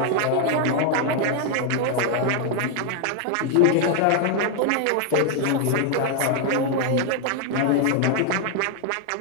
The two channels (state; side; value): different; both; correlation 0.00